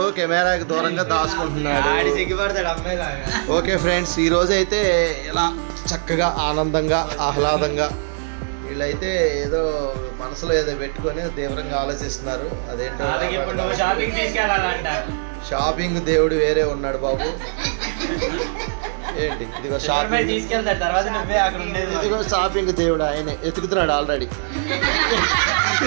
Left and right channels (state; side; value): silent; left; digital silence